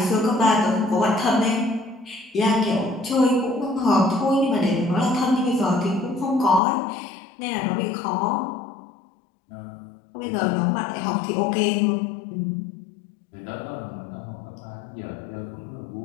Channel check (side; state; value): right; drops out; at 6.6 s